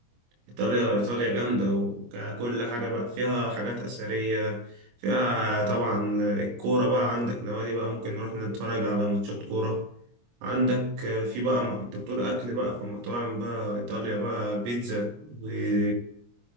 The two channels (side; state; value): left; late; 25 ms